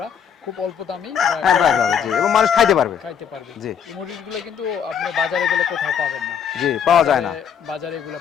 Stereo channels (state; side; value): quieter; right; 7.8 dB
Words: খুব অল্প দামেই হ্যাঁ পাওয়া যাবে, জি, এবং মানুষ খাইতে পারবে। জি, এই মুরগিগুলো কিন্তু আপনি বাজারে গেলে কোথাও পাবেন না। জি, পাওয়া যায় না, বাজারে এগুলো